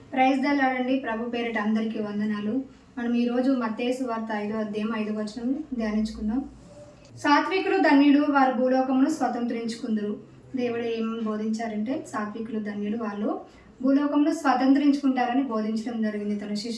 Praise the lord అండి. ప్రభు పేరిట అందరికీ వందనాలు. మనం ఈరోజు మత్తయి సువార్త 5వ అధ్యాయం 5వ వచనం ధ్యానించుకుందాం. సాత్వికులు ధన్యులు, వారు భూలోకమును స్వతంత్రించుకుందరు. దేవుడు ఏం బోధించారంటే సాత్వికులు ధన్యులు, వాళ్ళు భూలోకంలో స్వతంత్రించుకుంటారని బోధించడం జరిగింది తన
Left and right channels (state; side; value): identical; both; correlation 1.00